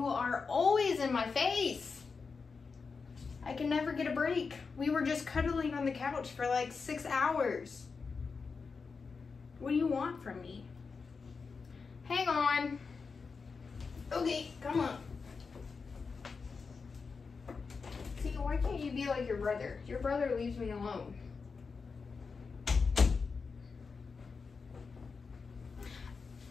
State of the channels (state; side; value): quieter; right; 4.9 dB